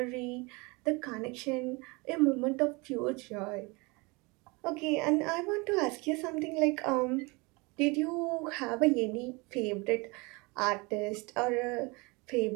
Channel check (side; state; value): left; quieter; 26.9 dB